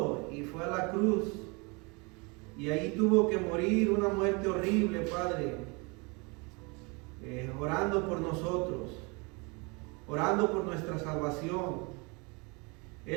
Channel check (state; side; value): quieter; left; 29.5 dB